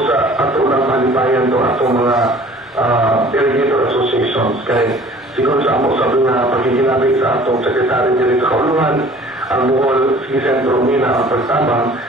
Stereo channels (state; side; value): normal; both; correlation 0.49